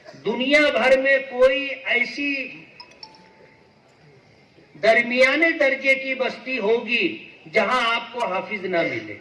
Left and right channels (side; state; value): both; identical; correlation 1.00